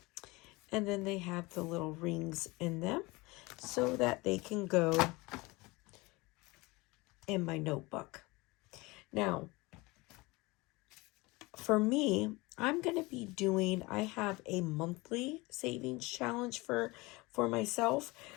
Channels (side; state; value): right; quieter; 23.4 dB